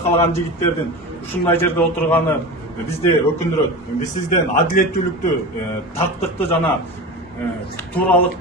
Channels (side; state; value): both; normal; correlation 0.28